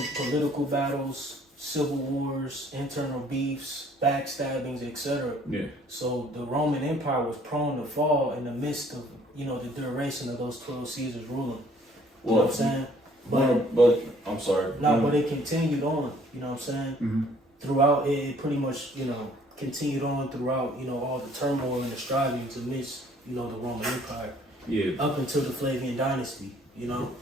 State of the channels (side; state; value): both; normal; correlation 0.59